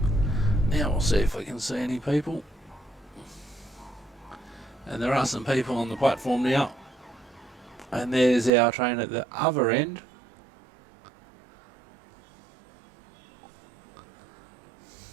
Now we'll see if we can see any people. And there are some people on the platform now. And there's our train at the other end.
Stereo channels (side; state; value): left; drops out; at 8.5 s